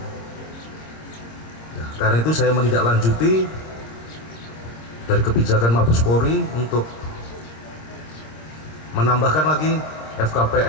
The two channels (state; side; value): late; right; 26 ms